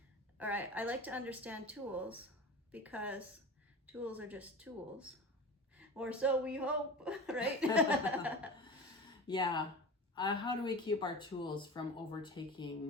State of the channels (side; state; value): both; normal; correlation 0.32